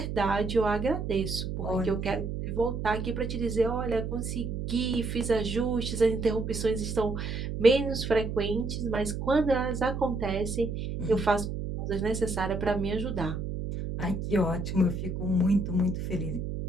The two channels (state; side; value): noise; right; hum, 4 dB below the sound